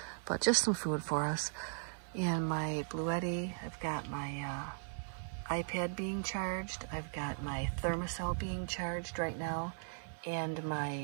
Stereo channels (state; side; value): silent; left; 52 dB below the other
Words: but just some food for us. And my Blue Yeti, I've got my iPad being charged. I've got my thermocell being charged right now, and